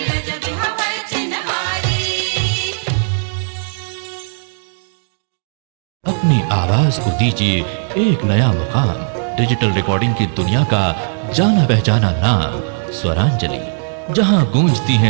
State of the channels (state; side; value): silent; left; 68 dB below the other